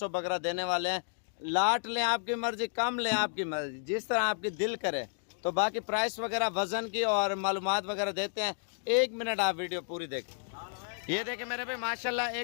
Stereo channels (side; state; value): right; silent; digital silence